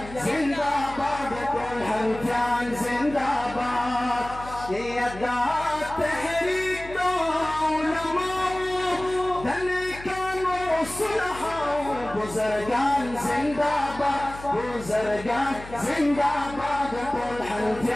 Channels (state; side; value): noise; left; hum, 15 dB below the sound